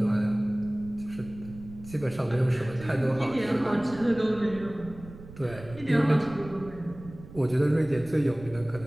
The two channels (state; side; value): noise; right; rumble, 17 dB below the sound